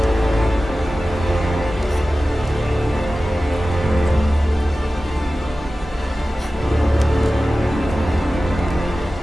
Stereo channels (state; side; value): normal; both; correlation 0.95